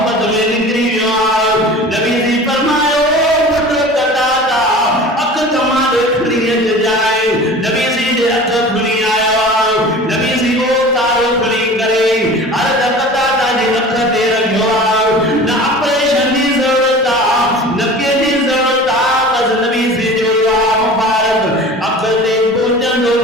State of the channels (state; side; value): normal; both; correlation 0.39